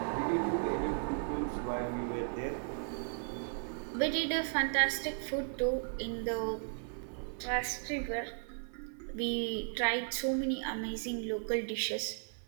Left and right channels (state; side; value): silent; left; 54 dB below the other